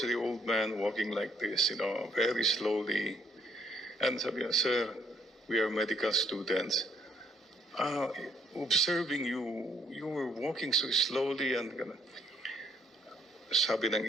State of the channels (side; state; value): both; normal; correlation 0.68